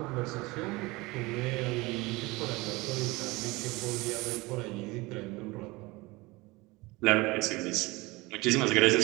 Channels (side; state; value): left; quieter; 22.7 dB